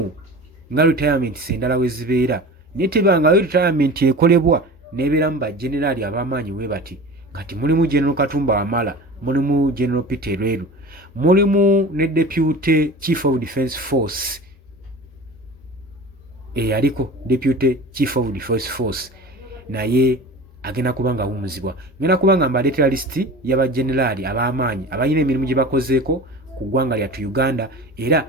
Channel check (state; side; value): normal; both; correlation 0.36